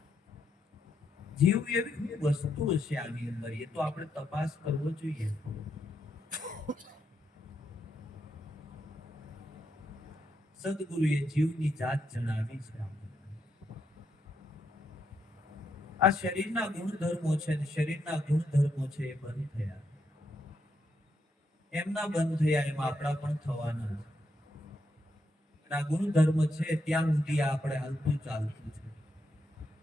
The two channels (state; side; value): normal; both; correlation 0.80